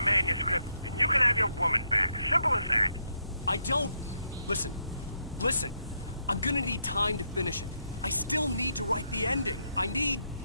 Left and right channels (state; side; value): inverted; both; correlation -0.78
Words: manuscript, and you can have your woman back. Simple as that. I don't... Listen. I'm gonna need time to finish it. I still need to write the ending. I need